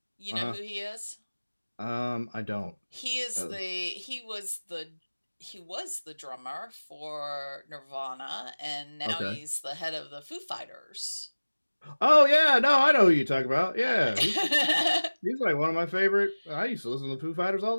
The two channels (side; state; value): both; inverted; correlation -1.00